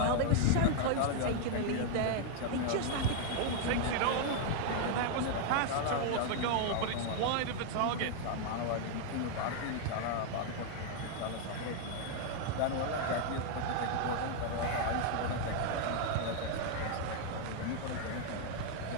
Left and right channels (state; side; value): different; both; correlation 0.00